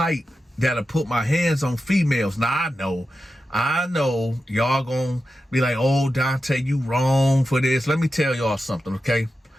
that'll put my hands on females. Now I know y'all gonna be like, oh, Dante, you wrong for this. Let me tell y'all something, okay?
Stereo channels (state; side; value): normal; both; correlation 0.90